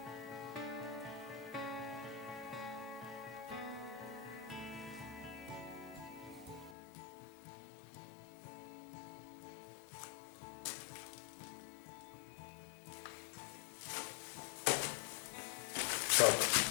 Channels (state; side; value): drops out; right; at 6.8 s